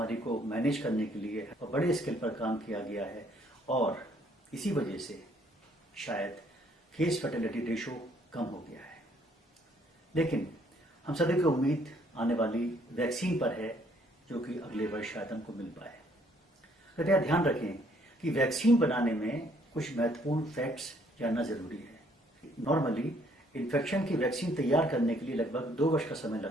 को मैनेज करने के लिए बड़े स्केल पर काम किया गया है और इसी वजह से शायद केस फर्टिलिटी रेशो कम हो गया है। लेकिन हम सभी की उम्मीद आने वाली वैक्सीन पर है, जो कि अगले वर्ष शायद हमको मिल पाए। कृपया ध्यान रखें कि वैक्सीन बनाने में कुछ महत्वपूर्ण फैक्ट्स जानना जरूरी है। नॉर्मली इन्फेक्शन की वैक्सीन तैयार करने के लिए लगभग 2 वर्ष का समय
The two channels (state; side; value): normal; both; correlation 0.65